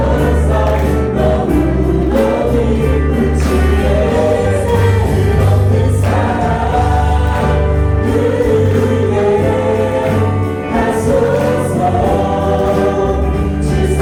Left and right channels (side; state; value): both; identical; correlation 1.00